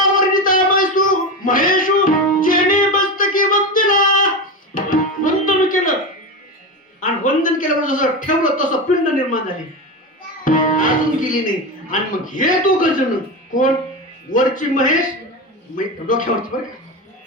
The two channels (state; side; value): normal; both; correlation 0.20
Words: वर्णिता महेशू जेने मस्तकी वंदिला, वंदन केलं. आणि वंदन केल्यावर जसं ठेवलं तसं पिंड निर्माण झाली, अजून गेली नाही. आणि मग हे दोघ जण कोण? वरची महेश, डोक्यावरची बरं